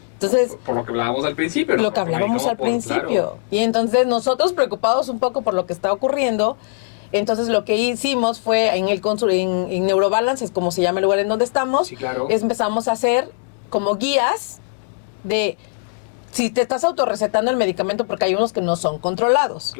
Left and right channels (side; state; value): right; silent; 66 dB below the other